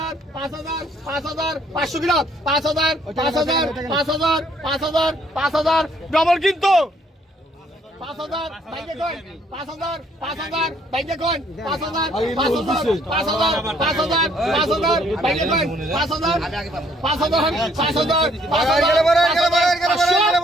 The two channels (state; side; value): normal; both; correlation 0.65